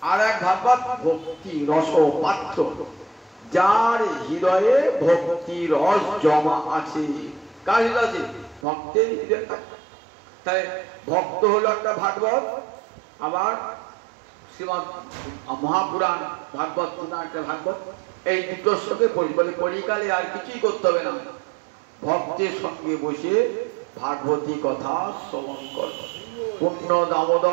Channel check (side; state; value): left; drops out; at 8.7 s